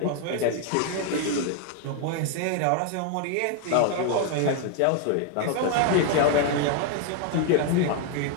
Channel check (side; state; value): both; different; correlation 0.00